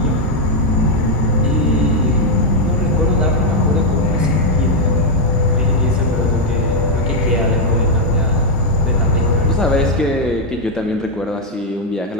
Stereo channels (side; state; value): both; normal; correlation 0.00